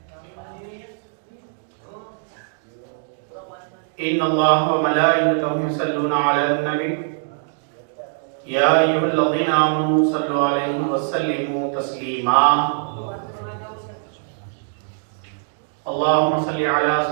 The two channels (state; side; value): silent; left; digital silence